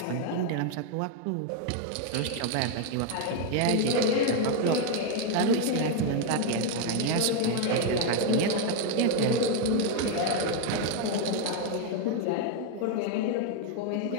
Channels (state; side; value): different; both; correlation 0.01